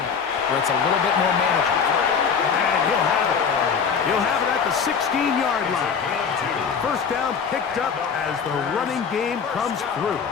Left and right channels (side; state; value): right; quieter; 6.3 dB